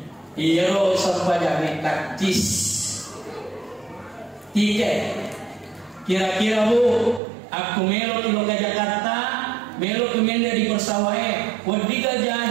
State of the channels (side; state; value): left; drops out; at 7.2 s